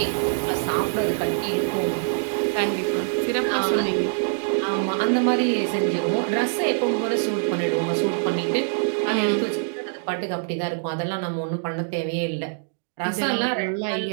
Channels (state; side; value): silent; left; digital silence